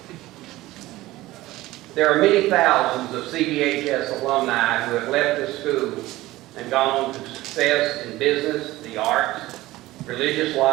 There are many thousands of CBHS alumni who have left this school and gone on to success in business, the arts, religious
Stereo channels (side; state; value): left; quieter; 17.6 dB